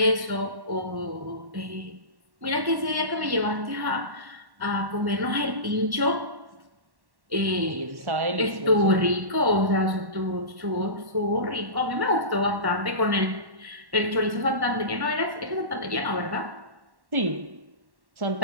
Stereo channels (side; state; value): left; late; 1.1 ms